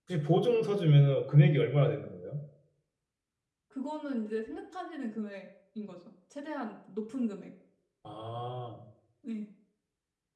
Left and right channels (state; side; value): identical; both; correlation 1.00